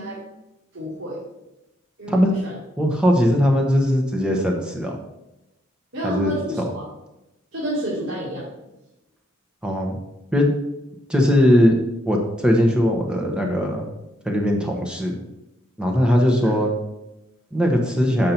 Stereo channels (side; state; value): both; normal; correlation 0.79